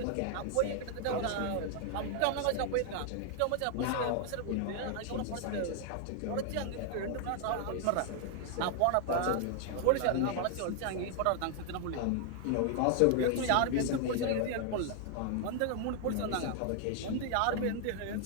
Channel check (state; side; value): different; both; correlation 0.00